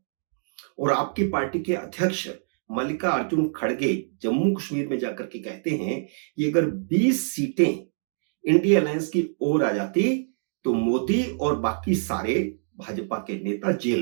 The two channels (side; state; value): left; silent; digital silence